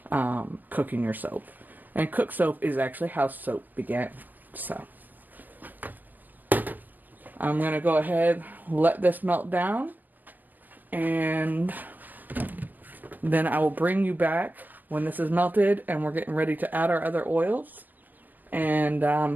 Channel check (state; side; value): late; left; 0.085 ms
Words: Cooking your soap. And cook soap is actually how soap began. So I'm going to go ahead, let this melt down, and then I will bring you back when this is melted and we're getting ready to add our other oils and